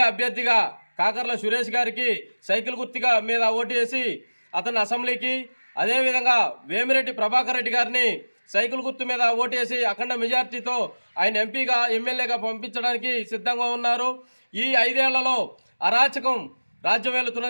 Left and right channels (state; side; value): inverted; both; correlation -1.00